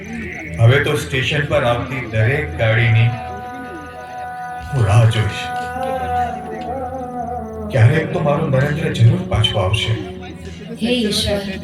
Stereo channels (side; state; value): both; identical; correlation 1.00